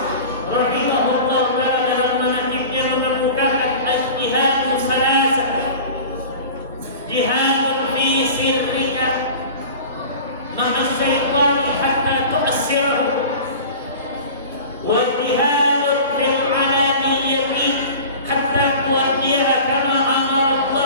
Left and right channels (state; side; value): inverted; both; correlation -0.37